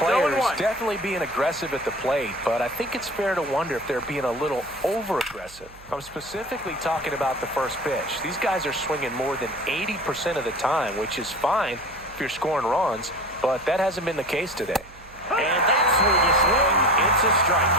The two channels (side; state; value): right; noise; hum, 22 dB below the sound